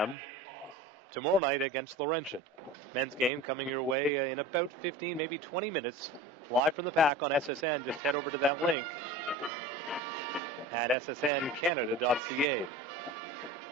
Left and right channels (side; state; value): both; normal; correlation 0.35